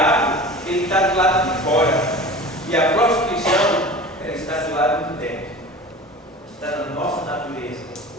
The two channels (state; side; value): normal; both; correlation 0.36